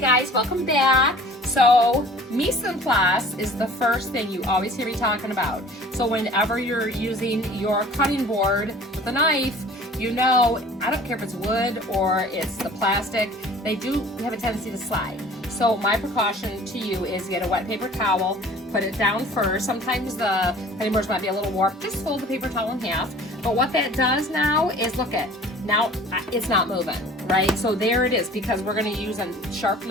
welcome back. So mise en place is the first thing you always hear me talking about. So whenever you're using your cutting board with a knife, you know, I don't care if it's wood or it's the plastic, they do have a tendency to slide. So my precaution to you is get a wet paper towel, put it down first. Sometimes the cutting boards might be a little warped. Just fold the paper towel in half. But what that does now is, look at, now it's not moving, right? So there it is, because we're going to use a sharp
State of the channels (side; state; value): both; normal; correlation 0.47